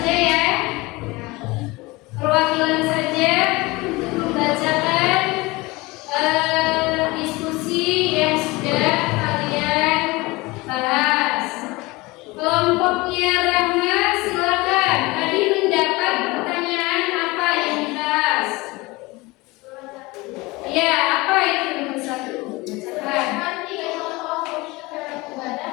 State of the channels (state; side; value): quieter; right; 22.7 dB